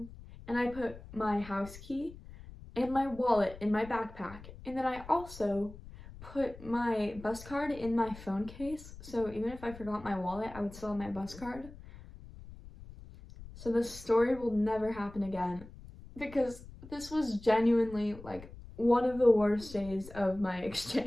and I put my house key and my wallet in my backpack. And then I also put my bus card in my phone case, so even if I forgot my wallet, I would still have my bus card. So this story will never happen again, because this was genuinely like one of the worst days of my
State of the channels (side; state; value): left; noise; rumble, 16 dB below the sound